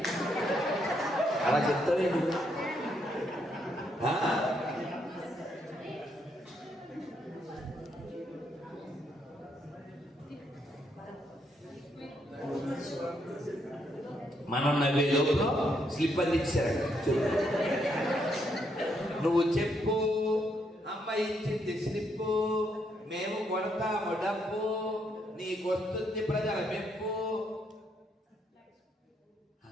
అలా చెప్తావేంటి? మనం నవ్వే లోపల స్లిప్ అందించారు. నువ్వు చెప్పు. అమ్మ ఇచ్చింది స్లిప్పు, మేము కొడతాము డబ్బు, నీకొస్తుంది ప్రజల మెప్పు.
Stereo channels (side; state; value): both; normal; correlation 0.75